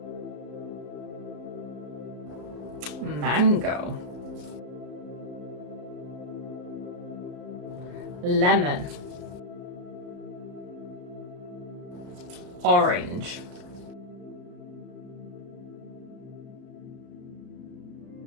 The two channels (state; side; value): late; left; 34 ms